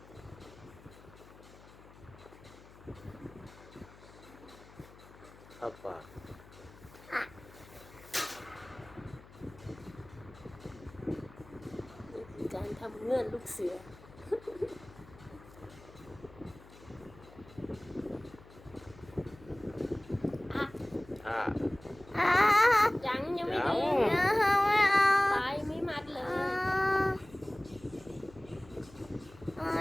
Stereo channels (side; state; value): left; noise; hum, 21 dB below the sound